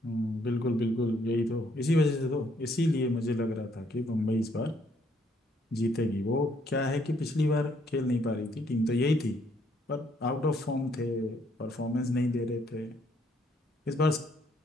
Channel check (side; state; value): both; normal; correlation 0.69